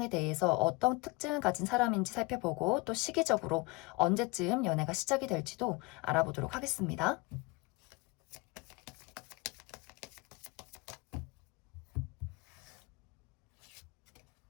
대해서 어떤 특징을 가진 사람인지 살펴보고 또 시기적으로 언제쯤 연애가 시작이 될지도 알아보도록 하겠습니다.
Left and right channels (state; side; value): quieter; right; 25.1 dB